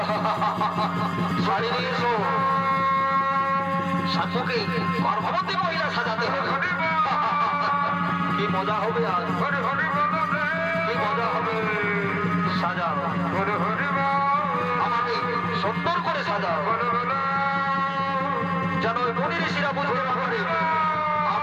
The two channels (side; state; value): both; identical; correlation 1.00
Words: শাড়ি নিয়ে এসো। শাশুকে গর্ভবতী মহিলা সাজাতে হবে। কি মজা হবে আজ, কি মজা হবে। সাজাও, আমাকে সুন্দর করে সাজাও, যেন ওই মুনি ঋষিরা বুঝতে না পারে